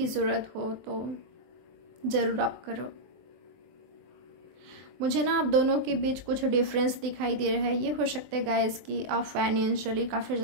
ज़रूरत हो तो ज़रूर आप करो। मुझे ना आप दोनों के बीच कुछ डिफरेंस दिखाई दे रहा है। ये हो सकता है गाइस कि आप फाइनेंशियली काफ़ी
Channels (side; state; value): left; late; 24 ms